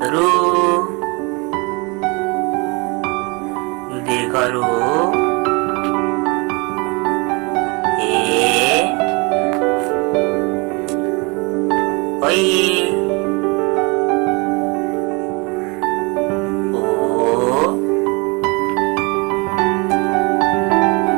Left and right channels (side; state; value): left; quieter; 28.8 dB